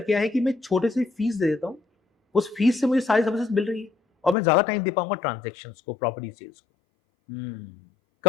क्या है कि मैं छोटे से फीस दे देता हूं, उस फीस से मुझे सारी सर्विसेज मिल रही है और मैं ज्यादा टाइम दे पाऊंगा ट्रांजेक्शन्स को, प्रॉपर्टी सेल्स को।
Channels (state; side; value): drops out; right; at 4.4 s